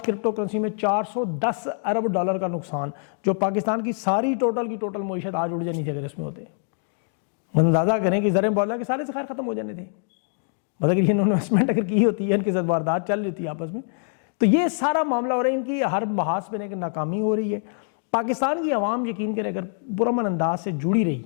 کرپٹو کرنسی میں 410 ارب ڈالر کا نقصان, جو پاکستان کی ساری ٹوٹل معیشت آج اڑ جانی تھی اگر اس میں ہوتے. اندازہ کریں کہ زریں بولا کہ سارے ذخائر ختم ہو جانے تھے. مطلب کہ انویسٹمنٹ اگر کی ہوتی ہے, ان کے ساتھ واردات چل رہی ہوتی ہے آپس میں, تو یہ سارا معاملہ ہو رہا ہے. ان کی ہر محاذ پہ ناکامی ہو رہی ہے. پاکستان کی عوام یقین کرے اگر پرامن انداز سے جڑی رہی,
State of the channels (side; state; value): right; silent; 62 dB below the other